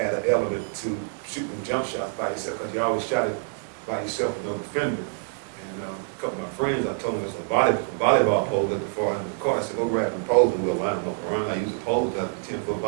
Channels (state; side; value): silent; left; 60 dB below the other